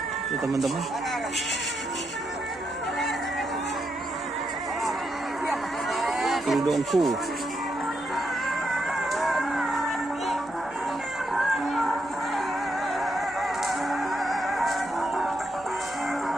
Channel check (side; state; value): left; noise; hum, 28 dB below the sound